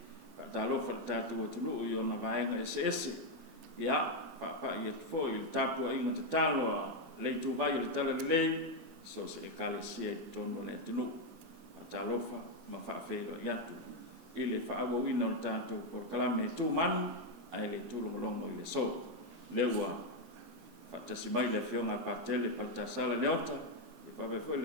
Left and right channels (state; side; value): late; left; 14 ms